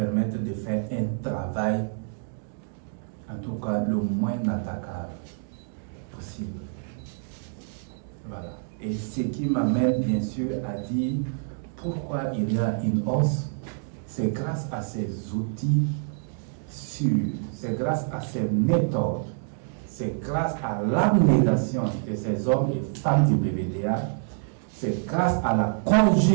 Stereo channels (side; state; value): left; silent; 60 dB below the other